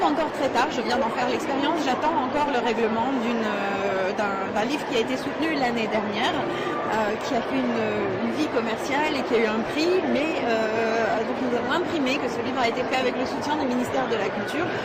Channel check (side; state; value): both; identical; correlation 1.00